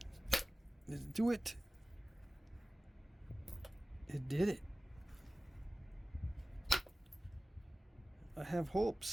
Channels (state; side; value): normal; both; correlation 0.96